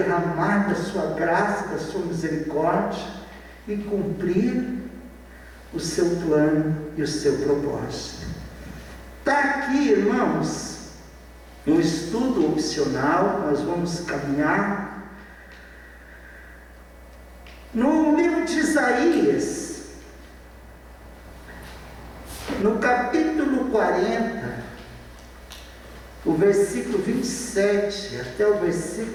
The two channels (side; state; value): both; identical; correlation 1.00